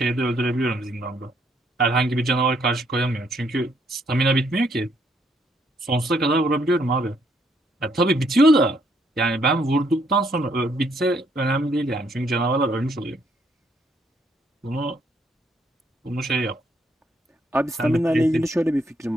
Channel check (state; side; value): normal; both; correlation 0.71